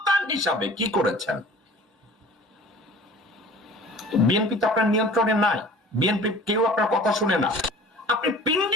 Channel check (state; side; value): normal; both; correlation 0.46